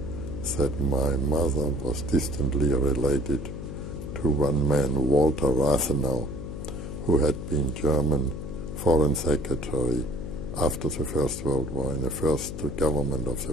that my mother was distantly related to one man, Walter Rathenau, who had been German Foreign Secretary after the First World War in the first government of the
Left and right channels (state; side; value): noise; left; hum, 8 dB below the sound